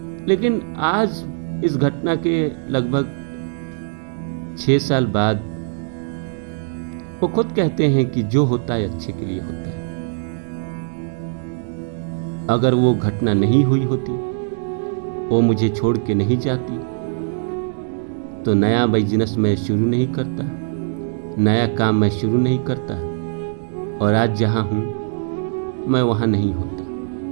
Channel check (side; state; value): left; silent; digital silence